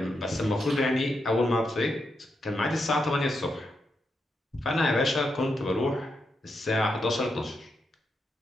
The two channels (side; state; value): both; normal; correlation 0.84